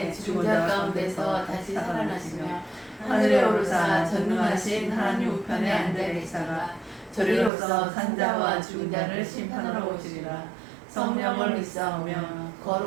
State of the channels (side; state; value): left; drops out; at 7.5 s